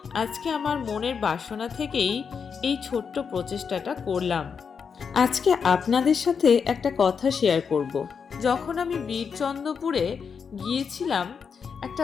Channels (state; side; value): quieter; right; 6.2 dB